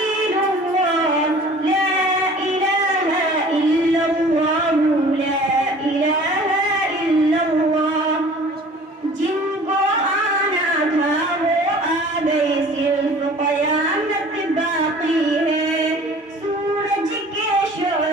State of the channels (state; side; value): normal; both; correlation 0.47